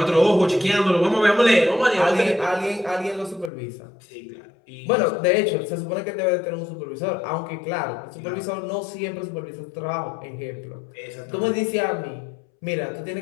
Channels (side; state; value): right; drops out; at 3.5 s